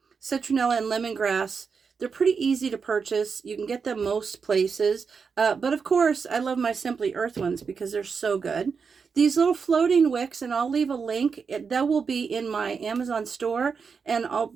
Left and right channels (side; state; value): left; quieter; 5.6 dB